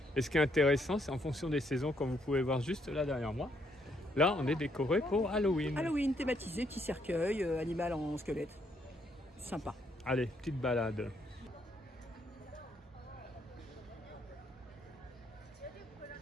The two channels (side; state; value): both; normal; correlation 0.73